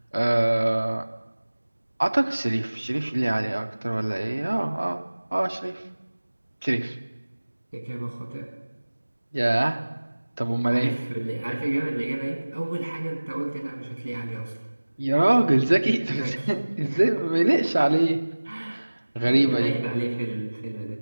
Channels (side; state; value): both; inverted; correlation -1.00